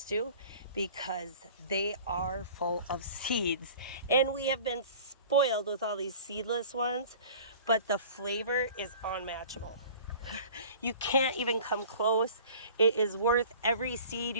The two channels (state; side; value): inverted; both; correlation -0.44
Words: to because they are full of seeds. And we have been spoiled with all these seedless ones, but the flavor is unmatchable. You can't even come close. It is worth every seed